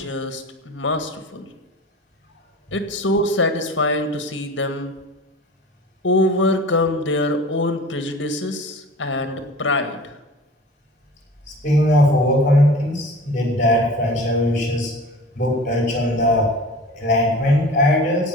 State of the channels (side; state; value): both; normal; correlation 0.39